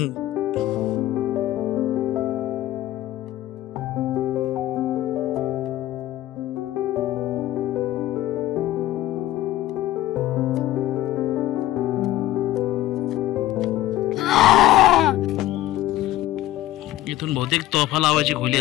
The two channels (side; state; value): right; quieter; 14.6 dB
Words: इथून बहुतेक तोफा लावायची खोली